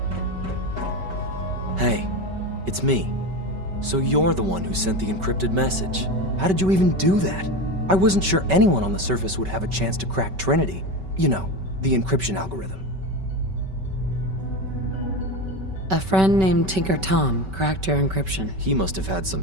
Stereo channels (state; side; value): late; left; 5.2 ms